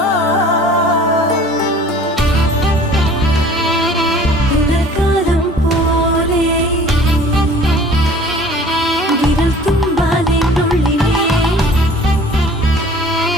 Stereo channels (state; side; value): normal; both; correlation 0.49